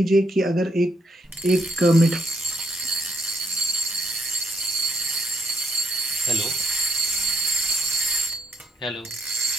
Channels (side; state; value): both; normal; correlation 0.76